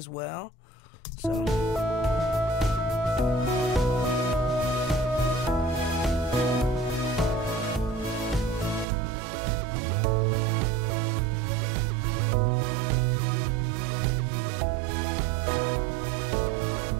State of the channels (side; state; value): left; drops out; at 8.8 s